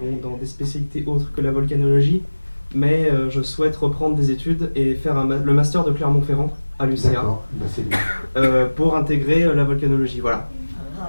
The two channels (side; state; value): both; inverted; correlation -1.00